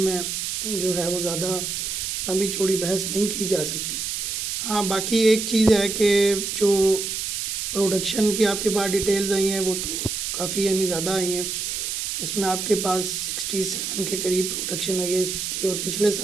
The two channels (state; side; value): noise; right; hiss, 3 dB below the sound